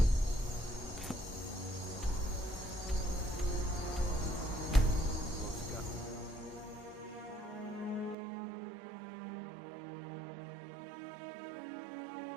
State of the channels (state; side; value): drops out; left; at 8.2 s